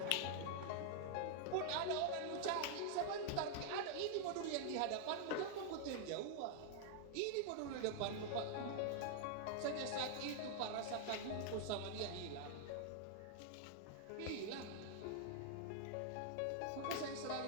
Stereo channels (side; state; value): both; different; correlation 0.00